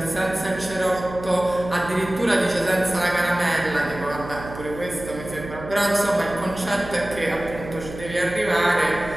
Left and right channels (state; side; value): noise; right; hum, 12 dB below the sound